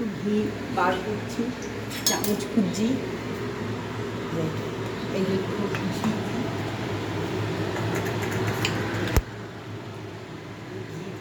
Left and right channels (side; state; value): both; identical; correlation 1.00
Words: ঘি বার করছি, চামচ খুঁজছি, এই যে একটু ঘি দিই,